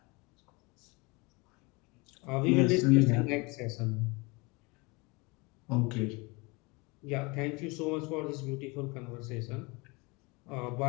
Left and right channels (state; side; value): quieter; right; 27.0 dB